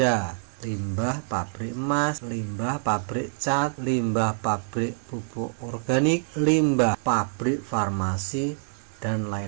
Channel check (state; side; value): silent; left; 55 dB below the other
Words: limbah pabrik emas, limbah pabrik cat, limbah pabrik pupuk organik, limbah pabrik farmasi, dan